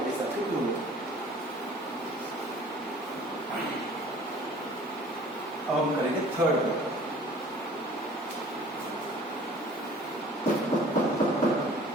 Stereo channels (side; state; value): both; normal; correlation 0.49